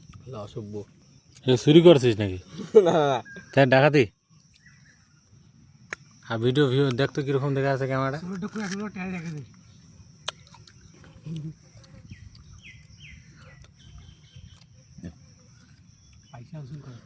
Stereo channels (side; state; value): both; identical; correlation 1.00